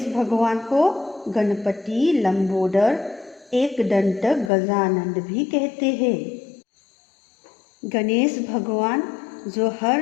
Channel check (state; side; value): drops out; right; at 4.5 s